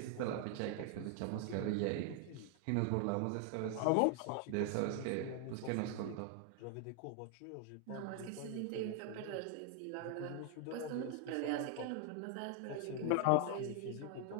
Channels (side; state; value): both; different; correlation 0.00